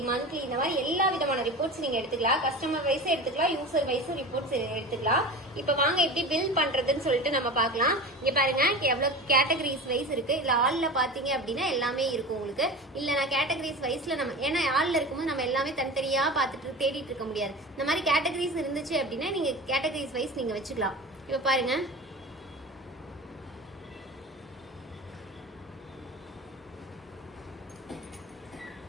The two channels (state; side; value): normal; both; correlation 0.31